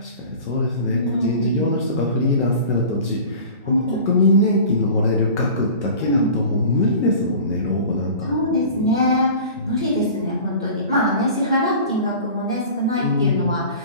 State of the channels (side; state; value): both; inverted; correlation -0.40